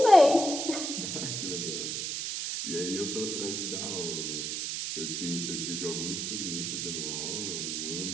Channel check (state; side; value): noise; right; hiss, 2 dB below the sound